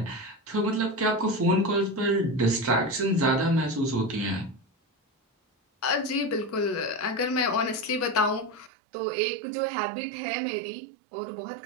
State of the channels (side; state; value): left; drops out; at 8.7 s